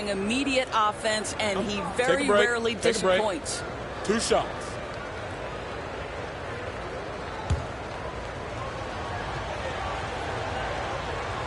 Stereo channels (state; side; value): identical; both; correlation 1.00